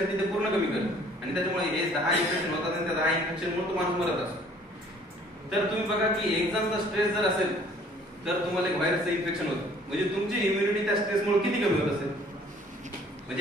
ते पूर्ण कमी करत आणि त्याच्यामुळे हे 10 इन्फेक्शन होतात आणि त्या 10 इन्फेक्शनमुळे तो माणूस मरत असतो. तर तुम्ही बघा की एक्झामचा स्ट्रेस जर असेल तर तुम्हाला एक व्हायरसचं इन्फेक्शन होतं, म्हणजे तुमची इम्युनिटी त्या स्ट्रेसमुळे किती कमी होत असेल.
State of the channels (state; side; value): normal; both; correlation 0.56